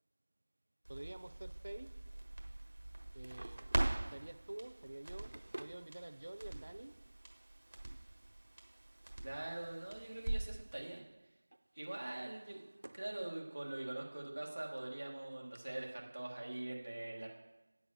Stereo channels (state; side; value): inverted; both; correlation -1.00